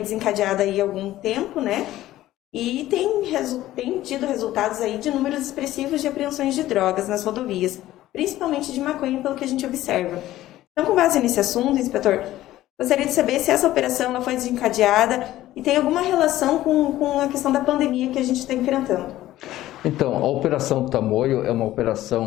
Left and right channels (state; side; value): quieter; right; 14.8 dB